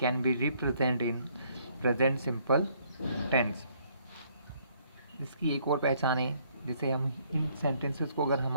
be represent in present simple tense. इसकी एक और पहचान है. जैसे हम इन सेंटेंसेस को अगर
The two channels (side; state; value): both; inverted; correlation -0.66